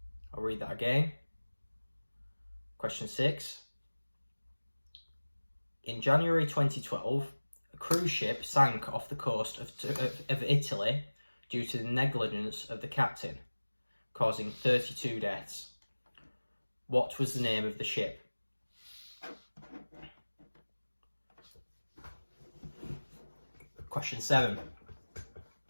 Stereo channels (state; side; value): inverted; both; correlation -1.00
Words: I'll read that again. Question 6. In January 2012, a cruise ship sank off the coast of Italy due to the negligence of the captain, causing 32 deaths. What was the name of the ship? Question 7.